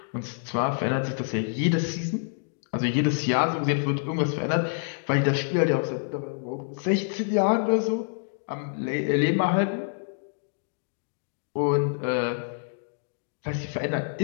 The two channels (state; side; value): silent; right; digital silence